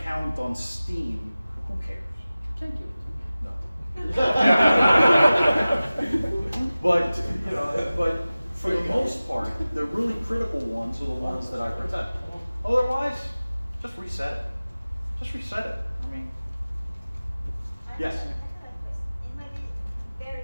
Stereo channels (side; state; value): both; inverted; correlation -0.97